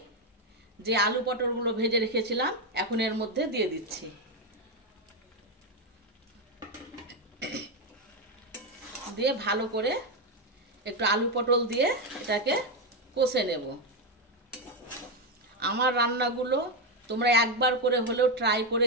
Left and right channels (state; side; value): normal; both; correlation 0.07